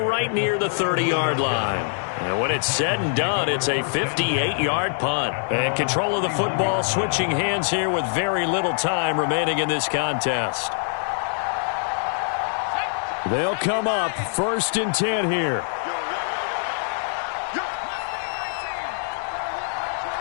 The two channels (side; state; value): right; silent; digital silence